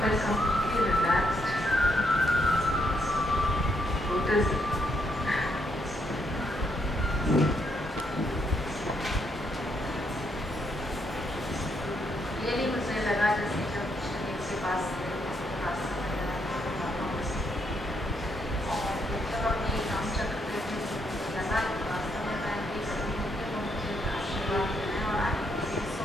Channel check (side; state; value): both; normal; correlation 0.76